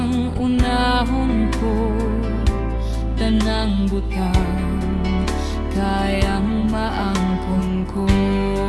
unahon ko, tanang butang kayang maangkon ko.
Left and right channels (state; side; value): identical; both; correlation 1.00